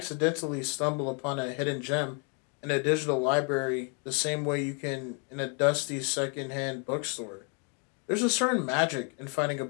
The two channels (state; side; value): quieter; right; 37.9 dB